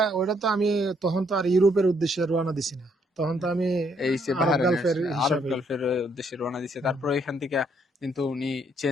ওইটা তো আমি তখন তো আর ইউরোপের উদ্দেশ্যে রওনা দিছি না। তখন তো আমি এই যে আরব বাহারানের গালফের আরব হিসাবেই। গালফের উদ্দেশ্যে রওনা দিছে, হুম। তারপরে এখান থেকে কিন্তু উনি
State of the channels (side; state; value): both; normal; correlation 0.70